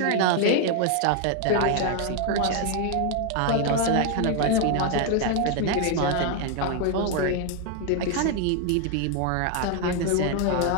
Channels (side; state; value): both; different; correlation 0.01